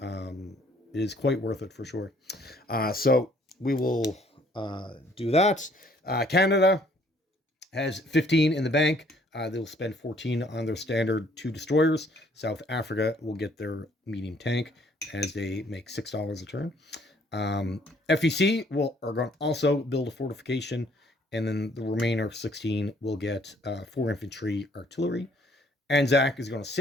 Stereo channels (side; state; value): both; normal; correlation 0.62